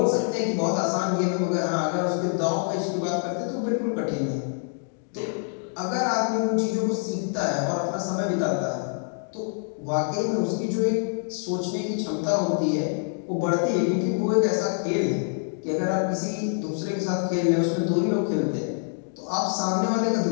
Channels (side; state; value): right; silent; 61 dB below the other